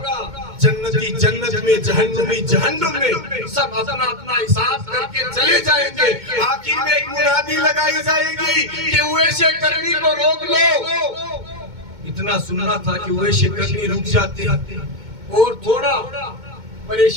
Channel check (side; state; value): left; late; 2.2 ms